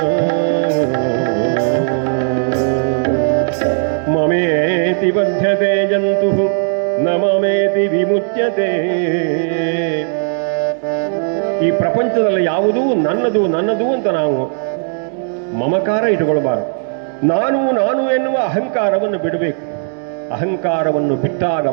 ಮಮೇತಿ ಬಧ್ಯತೆ ಜಂತು ನ ಮಮೇತಿ ವಿಮುಚ್ಯತೆ. ಈ ಪ್ರಪಂಚದಲ್ಲಿ ಯಾವುದೂ ನನ್ನದು ನನ್ನದು ಅಂತ ನಾವು ಮಮಕಾರ ಇಟ್ಟುಕೊಳ್ಬಾರದು. ನಾನು ನಾನು ಎನ್ನುವ ಅಹಂಕಾರವನ್ನು ಬಿಡಬೇಕು. ಅಹಂಕಾರವನ್ನು ಬಿಟ್ಟಾಗ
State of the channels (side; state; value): left; silent; 69 dB below the other